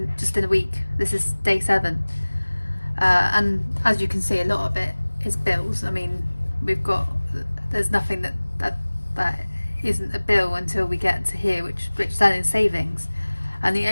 a week. This is day 7, and as you can see, a lot of it is bills. I mean, there's nothing that isn't a bill until we get to here, which then is savings. And the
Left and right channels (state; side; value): inverted; both; correlation -1.00